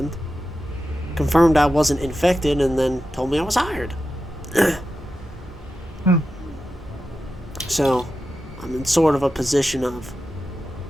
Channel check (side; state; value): both; normal; correlation 0.91